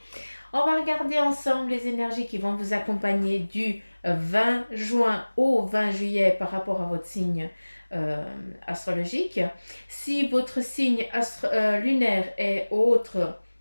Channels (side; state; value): both; inverted; correlation -1.00